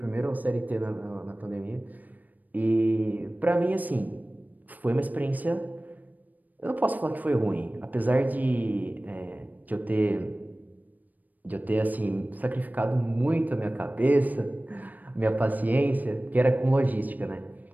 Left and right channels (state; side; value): late; left; 0.082 ms